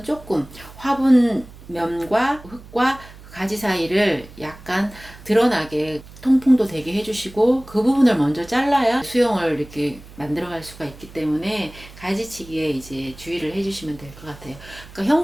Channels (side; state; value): right; noise; hum, 19 dB below the sound